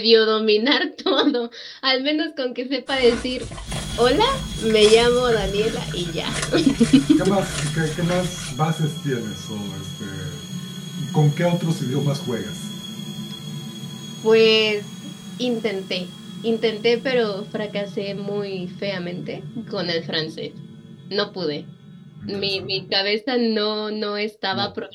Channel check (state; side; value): identical; both; correlation 1.00